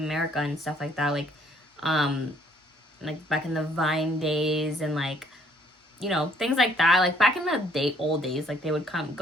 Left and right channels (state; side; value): normal; both; correlation 0.63